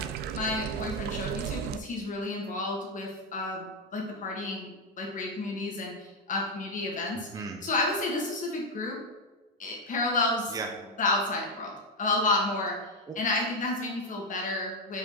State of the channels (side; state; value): both; normal; correlation 0.05